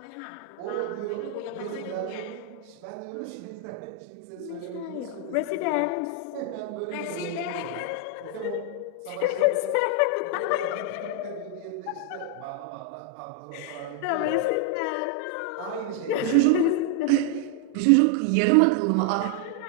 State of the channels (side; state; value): both; different; correlation 0.00